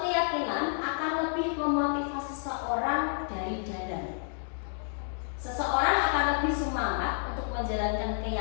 keyakinan akan lebih memotivasi seseorang dari dalam. Seseorang akan lebih semangat untuk menjalankan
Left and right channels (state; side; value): silent; right; 58 dB below the other